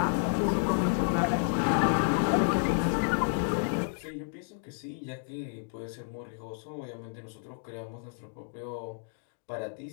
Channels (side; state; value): right; silent; digital silence